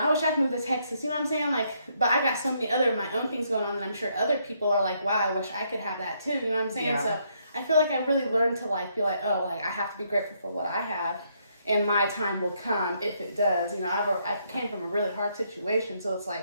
wish I could move to Texas. You know what I'm saying? Like, but I got so many other my own things going on, and I'm sure other people are like, wow, I wish I could have that too. You know what I'm saying? Yeah. So I feel like I really learned to like be like, oh, like I have to be grateful for what I have, and my time will come if it does. You know, I came from a really hard situation, so it's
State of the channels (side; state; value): both; inverted; correlation -0.73